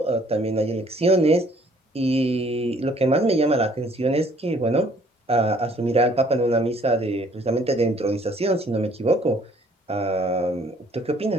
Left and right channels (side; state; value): both; normal; correlation 0.60